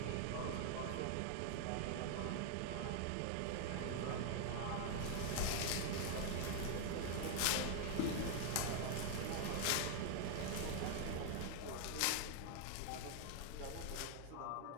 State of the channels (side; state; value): both; different; correlation 0.00